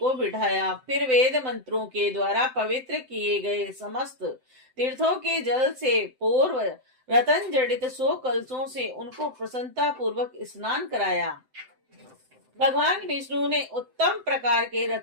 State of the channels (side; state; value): left; late; 7.8 ms